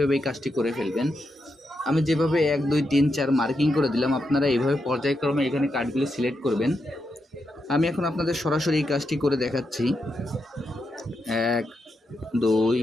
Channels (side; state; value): both; normal; correlation 0.84